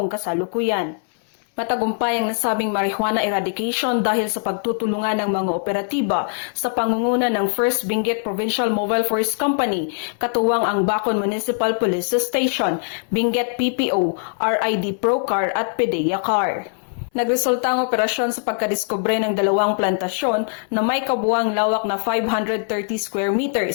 kasalukuyan. Matagumpay ang nasabing marijuana eradication dahil sa pagtutulungan ng mga operatiba sa pangunguna ng First Benguet Provincial Mobile Forest Company, katuwang ang Bacon Municipal Police Station, Benguet PPO, RID Procar at PDEA Car. Nagresulta ang operasyon sa pagkadiskubre ng dalawang plantasyon na may kabuuang lawak na 530 square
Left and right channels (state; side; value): silent; right; 63 dB below the other